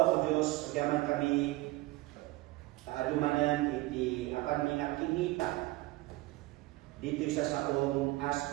Diyos, agaman kami kaadumanan iti apan minakingita dito sa saong as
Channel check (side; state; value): left; quieter; 19.8 dB